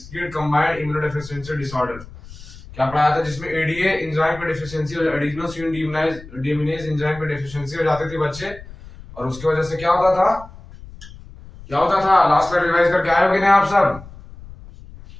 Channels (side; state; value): left; noise; rumble, 17 dB below the sound